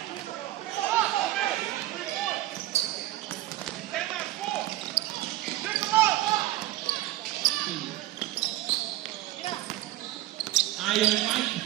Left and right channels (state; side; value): quieter; left; 15.6 dB